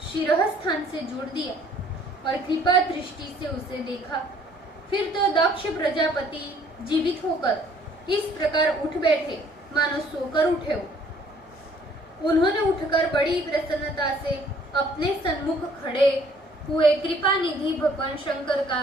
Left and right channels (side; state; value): both; normal; correlation 0.59